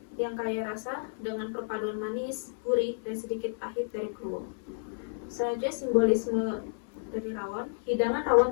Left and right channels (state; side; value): silent; right; 57 dB below the other